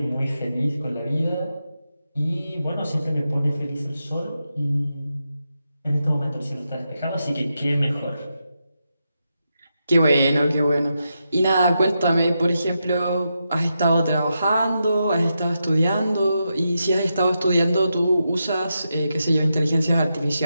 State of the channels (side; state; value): both; inverted; correlation -0.86